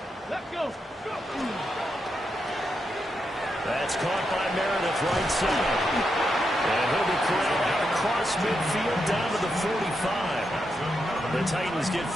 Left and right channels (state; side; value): normal; both; correlation 0.84